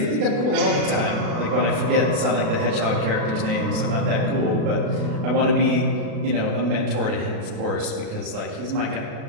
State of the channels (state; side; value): late; left; 36 ms